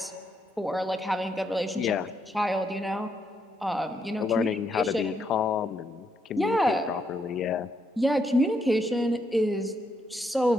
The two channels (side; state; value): both; normal; correlation 0.77